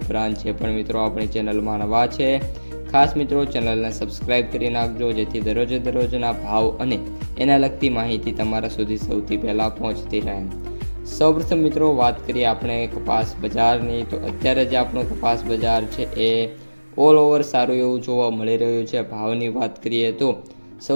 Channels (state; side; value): inverted; both; correlation -1.00